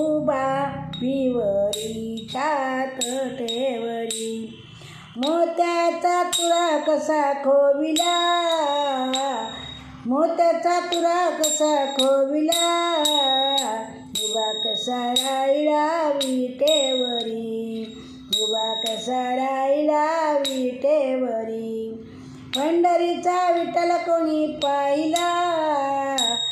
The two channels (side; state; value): both; identical; correlation 1.00